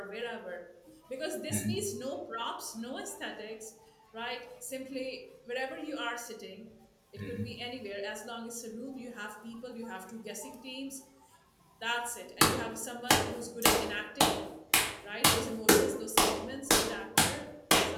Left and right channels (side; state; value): both; identical; correlation 1.00